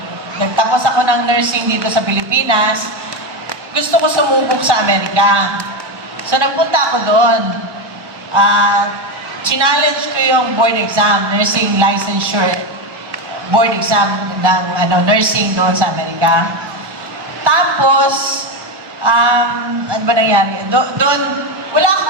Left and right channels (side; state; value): left; late; 1.1 ms